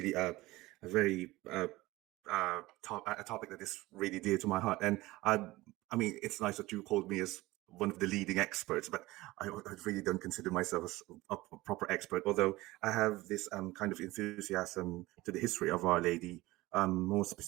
a very a topic that is really dear to my heart, and I mean, it's nice that you called me as one of the leading experts, but I really don't consider myself as a proper expert. Although I have this kind of enthusiasm to the history of Our Lady, more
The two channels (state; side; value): quieter; left; 19.2 dB